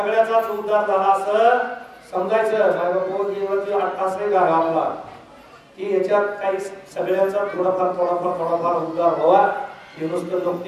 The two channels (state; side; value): identical; both; correlation 1.00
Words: उद्धार झाला असं समजायचं. असं गाव आपला की याच्यात काही सगळ्यांचा थोडाफार उद्धार व्हावा. हे नुसतं